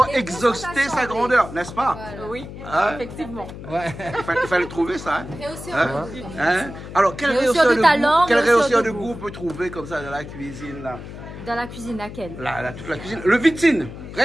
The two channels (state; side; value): noise; left; hum, 12 dB below the sound